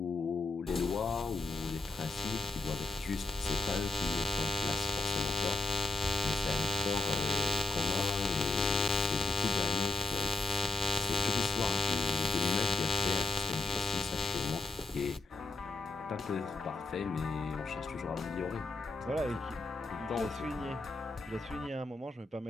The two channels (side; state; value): right; quieter; 3.1 dB